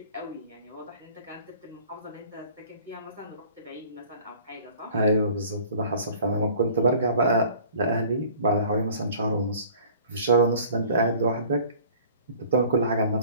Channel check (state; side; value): inverted; both; correlation -0.49